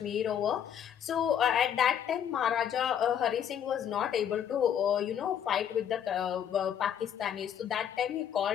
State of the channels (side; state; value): right; quieter; 9.1 dB